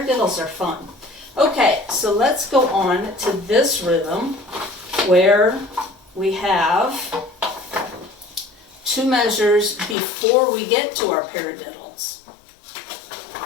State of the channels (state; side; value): drops out; right; at 10.0 s